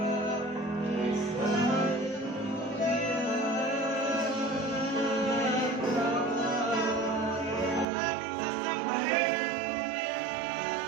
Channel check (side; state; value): left; drops out; at 7.9 s